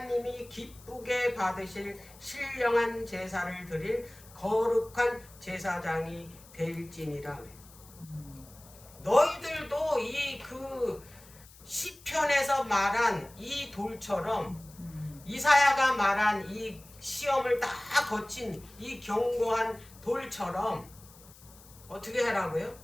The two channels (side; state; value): left; noise; hiss, 22 dB below the sound